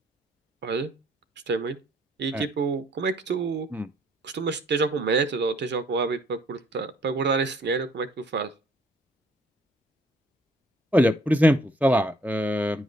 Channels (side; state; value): both; normal; correlation 0.62